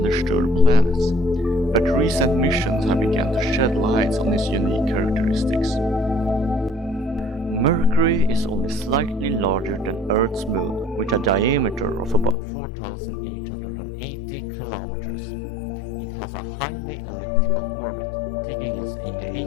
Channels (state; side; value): drops out; right; at 12.4 s